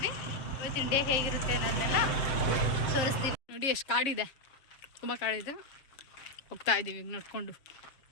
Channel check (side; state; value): right; late; 7.2 ms